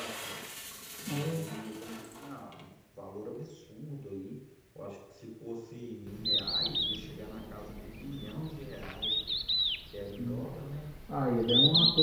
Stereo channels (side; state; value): both; identical; correlation 1.00